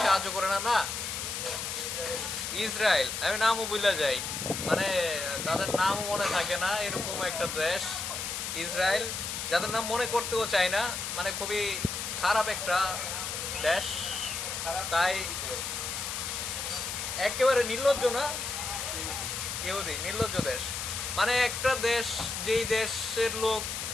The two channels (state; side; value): noise; left; hiss, 4 dB below the sound